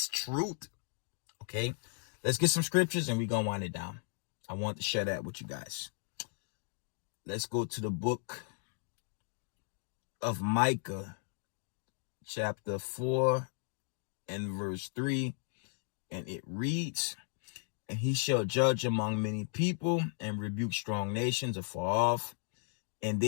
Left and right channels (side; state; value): right; silent; 54 dB below the other